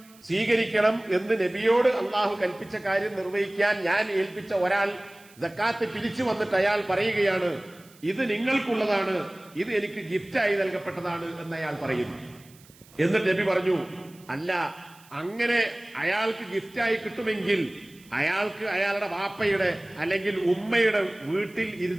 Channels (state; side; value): noise; right; hiss, 26 dB below the sound